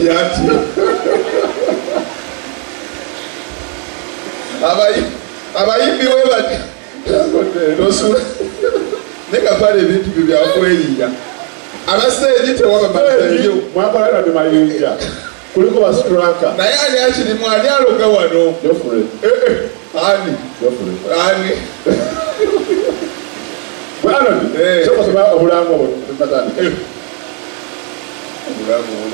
ati abayimbi webati nosu neka pale bintu byakweyiga abaseji tewabamazeyo mwapala na mayinja kuliko ba striker naye ali akiri mwani aloga wano dofure ani bwana soko sema obulango matani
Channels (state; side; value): quieter; left; 37.3 dB